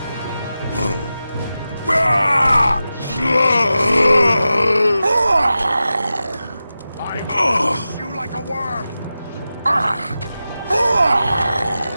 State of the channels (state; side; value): inverted; both; correlation -0.93